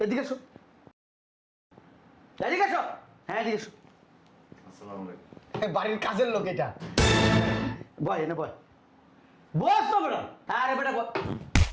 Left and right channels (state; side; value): identical; both; correlation 1.00